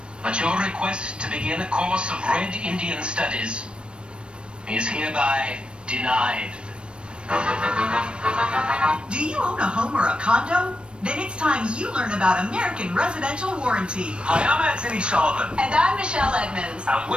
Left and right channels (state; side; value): late; left; 0.057 ms